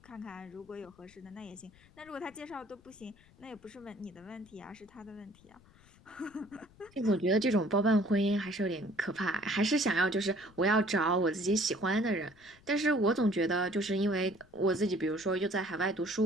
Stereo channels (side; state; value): left; noise; rumble, 27 dB below the sound